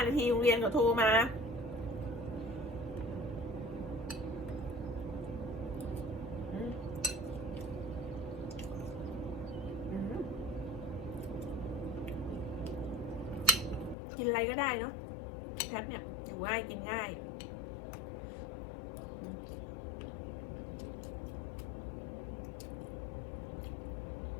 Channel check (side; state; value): right; drops out; at 14.0 s